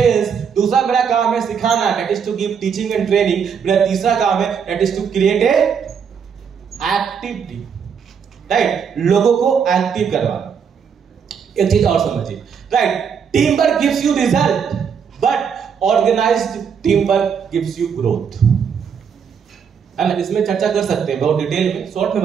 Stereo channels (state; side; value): quieter; left; 6.9 dB